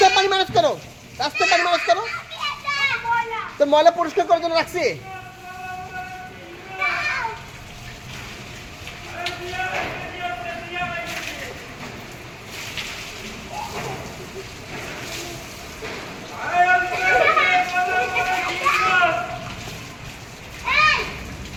পানি মানুষ করো, রাস্তায় পানি মানুষ করো। তোর ময়লা পরিষ্কার করার জন্য রাখছি।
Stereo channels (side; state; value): both; identical; correlation 1.00